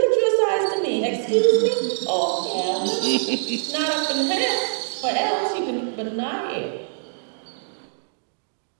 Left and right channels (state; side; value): silent; left; digital silence